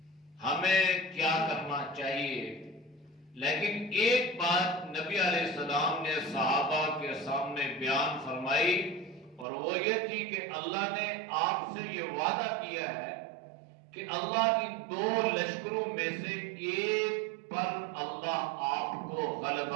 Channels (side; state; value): left; drops out; at 9.5 s